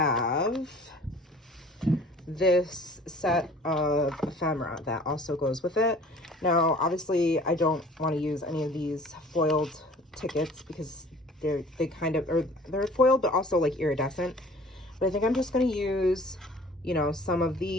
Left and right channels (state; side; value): normal; both; correlation 0.49